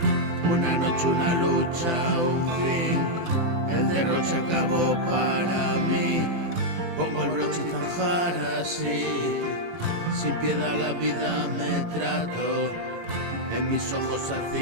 Una noche, una lucha, un fin, el derroche acabó para mí. Pongo el broche y zanjar así, sin piedad la vida me trato, en mis ojos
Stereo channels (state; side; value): late; left; 18 ms